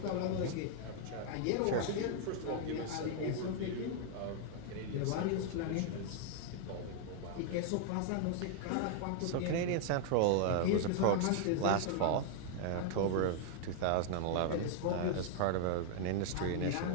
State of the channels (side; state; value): both; different; correlation 0.00